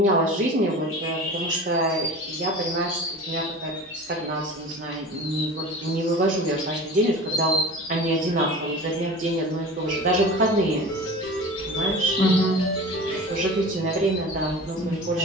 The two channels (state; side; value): normal; both; correlation 0.36